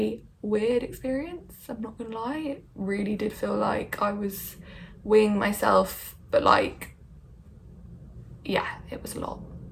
weird experience, I'm not gonna lie. It really did feel like I was weighing myself, but like, yeah, it was a lot.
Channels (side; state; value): both; identical; correlation 1.00